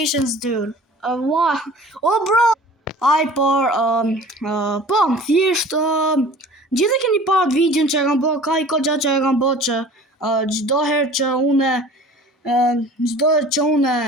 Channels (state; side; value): normal; both; correlation 0.44